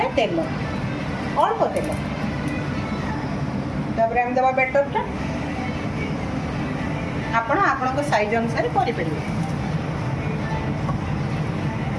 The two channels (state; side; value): identical; both; correlation 1.00